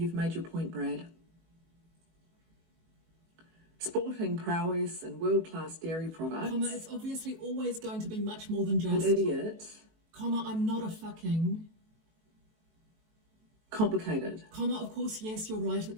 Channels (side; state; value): left; late; 18 ms